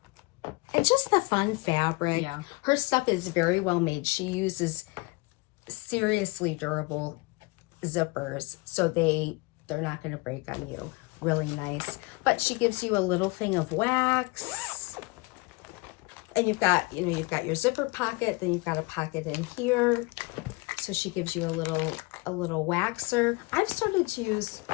And just the fun fabric. Yeah. Her stuff is very well made. She uses seriously durable zippers, so they're not going to break on you. Really nice. But she gives you a little thing of wax, and you've got your zipper pocket, then you've got a pocket in here. So she gives you a little waxer. I've started to use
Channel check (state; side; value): quieter; right; 26.1 dB